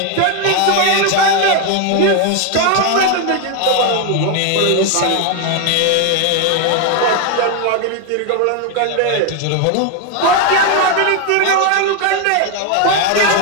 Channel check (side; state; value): both; different; correlation 0.01